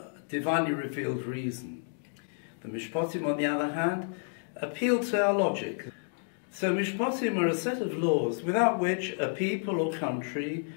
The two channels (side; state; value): right; silent; 58 dB below the other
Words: divinely revealed reason. The Mishpatim, on the other hand, appeal to our logic. So Mishpatim are a set of laws without which a people or country